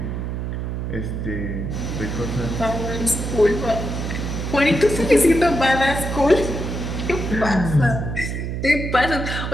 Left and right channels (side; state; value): right; noise; hum, 4 dB below the sound